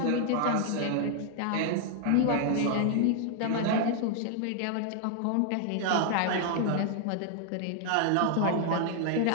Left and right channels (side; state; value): both; different; correlation 0.00